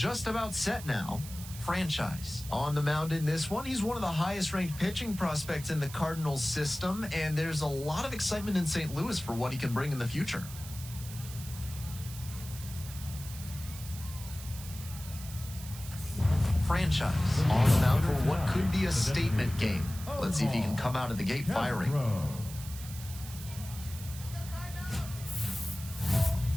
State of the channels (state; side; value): noise; right; hiss, 13 dB below the sound